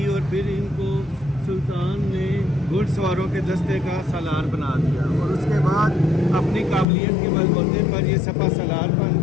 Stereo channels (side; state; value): right; drops out; at 6.9 s